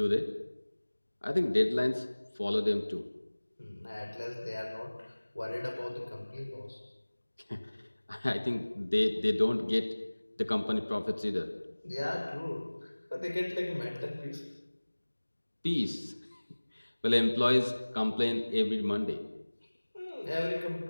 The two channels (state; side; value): inverted; both; correlation -1.00